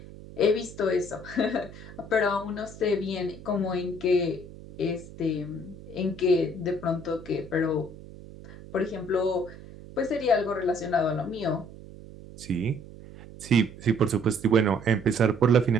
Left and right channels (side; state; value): right; noise; hum, 16 dB below the sound